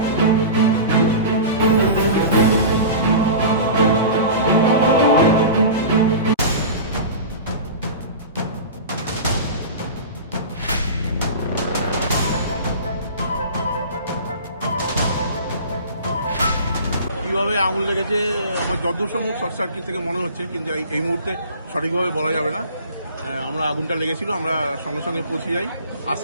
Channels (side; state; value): both; inverted; correlation -0.34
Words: আঙুল লেগেছে আমার যতদূর সম্ভব শর্ট সার্কিট থেকে মনে হচ্ছে, কিন্তু এই মুহূর্তে সঠিকভাবে বলা যাবে না। আমরা আগুনটা লেগেছিল, আমরা সঙ্গে সঙ্গে পৌঁছে যাই,